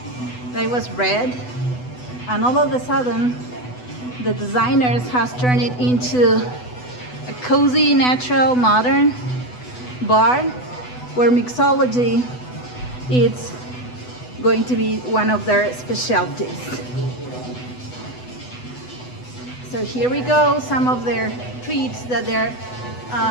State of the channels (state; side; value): late; right; 8.0 ms